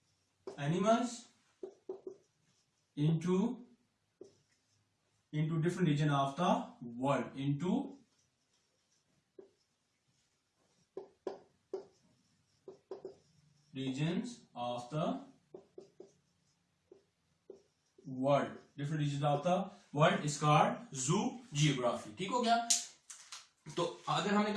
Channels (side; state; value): both; identical; correlation 1.00